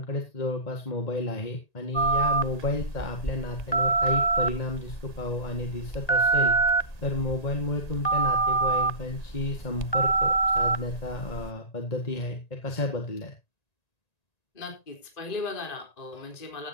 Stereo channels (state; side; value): late; right; 1.9 ms